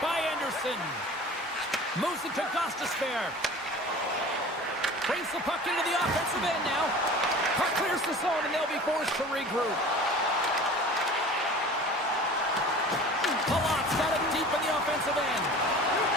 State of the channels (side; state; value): both; normal; correlation 0.41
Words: by Anderson. Moves it to Gostisbehere. Brings the puck into the offensive end now. Puck clears the zone and they'll be forced to regroup. Palat's got it deep in the offensive end.